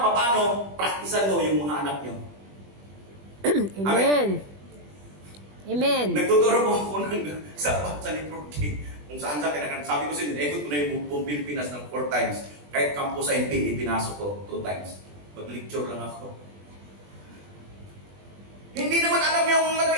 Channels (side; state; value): left; late; 20 ms